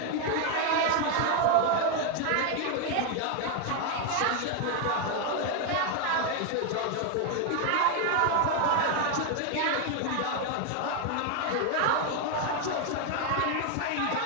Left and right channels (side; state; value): both; different; correlation 0.01